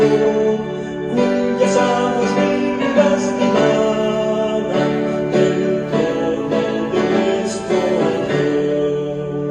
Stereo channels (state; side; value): identical; both; correlation 1.00